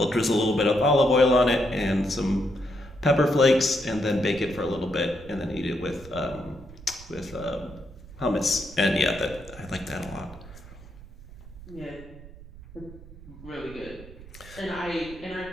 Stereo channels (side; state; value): right; noise; rumble, 17 dB below the sound